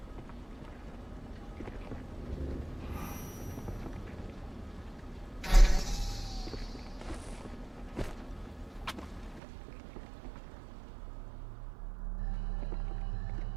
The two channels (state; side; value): drops out; left; at 9.4 s